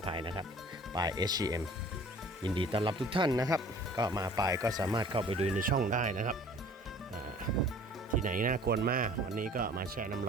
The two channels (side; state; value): both; normal; correlation 0.49